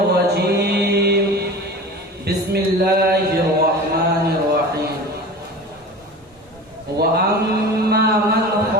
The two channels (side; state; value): both; normal; correlation 0.35